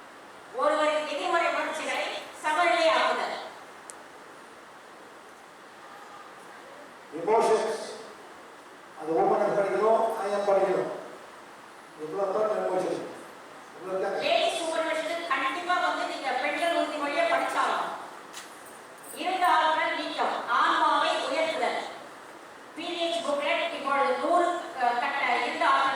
ஒருவரின் எதிர்மறை உணர்ச்சிகளை சமநிலையாக்குதல். எமோஷன்ஸ் அது ஓப்பன் படிக்கணும். ஆயம் படிக்கணும். எவ்வளோ தான் எமோஷன் லேடி சூப்பர்வைசர் கண்டிப்பா வந்து நீங்க பெண்கள் உறுதிமொழியை படிச்சாலும் இருந்த ஆற்றல் நீக்கம், ஆன்மாவை உயர்த்துதல். பீரியட்ஸ் புக்லெட் இப்பொழுது 100 கட்ட இருந்த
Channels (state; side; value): identical; both; correlation 1.00